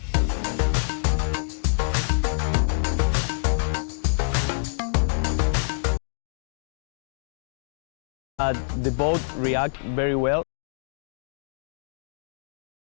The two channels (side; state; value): right; silent; digital silence